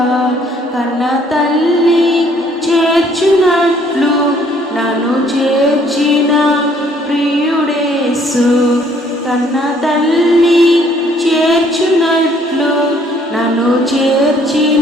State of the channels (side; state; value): both; normal; correlation 0.62